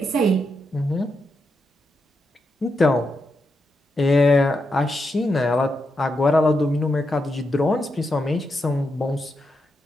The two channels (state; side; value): normal; both; correlation 0.84